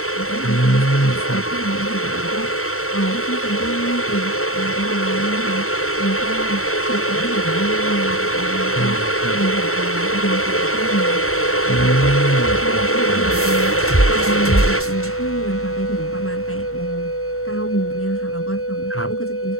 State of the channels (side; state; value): right; late; 0.63 ms